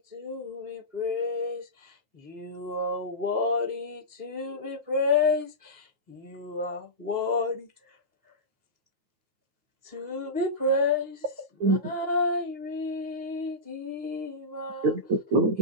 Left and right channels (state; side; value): late; left; 9.3 ms